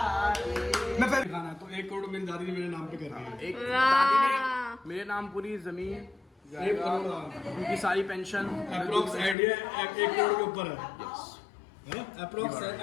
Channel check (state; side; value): drops out; right; at 9.3 s